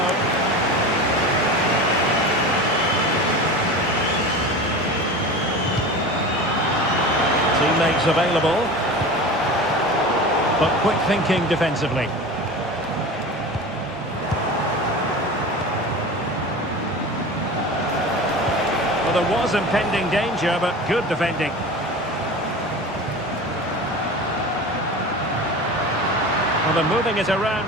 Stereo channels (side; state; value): both; normal; correlation 0.32